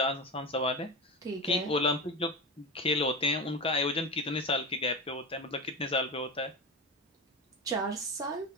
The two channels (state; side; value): normal; both; correlation 0.23